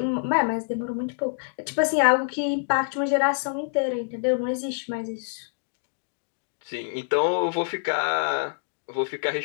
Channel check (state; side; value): silent; right; digital silence